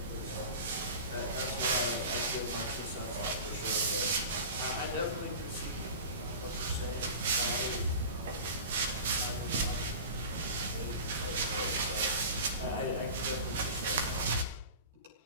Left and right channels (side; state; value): both; inverted; correlation -0.34